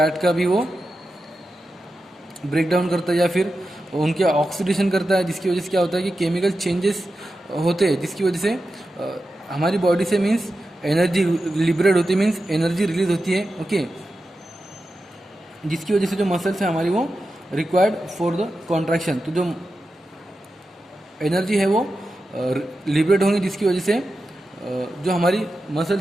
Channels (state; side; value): normal; both; correlation 0.91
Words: का भी वो ब्रेक डाउन करता है, या फिर उनके ऑक्सीडेशन करता है, जिसकी वजह से क्या होता है कि केमिकल चेंजेस होते हैं, जिसकी वजह से हमारी बॉडी से मीन्स एनर्जी लिबरेट होती है, मीन्स एनर्जी रिलीज होती है, ओके, जिसकी वजह से जो मसल्स है हमारी वो रिक्वायर्ड फॉर द कॉन्ट्रैक्शन। तो जो एनर्जी है वो लिबरेट होंगी, जिसकी वजह से जो हमारी